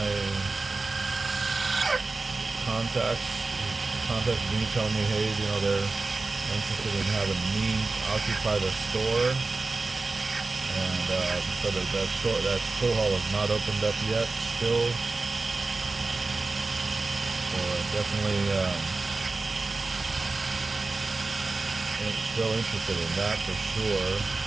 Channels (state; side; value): quieter; left; 3.6 dB